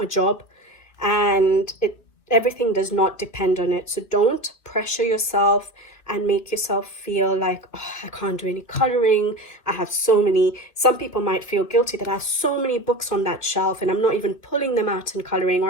a job, and everything does not depend on it. So don't pressure yourself and make yourself feel like, oh, I can't do any coloring. I have so many. Some people might feel guilty that I have so many books on that shelf and I'm not even pulling them out and coloring, or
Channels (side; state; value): right; late; 2.5 ms